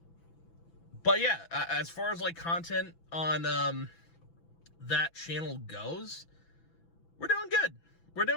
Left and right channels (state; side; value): late; right; 6.0 ms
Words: But yeah, as far as like content on that channel goes, we're doing good. We're